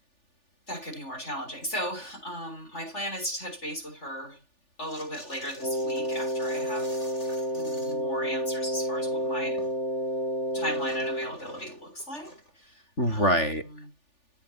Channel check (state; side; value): late; right; 3.4 ms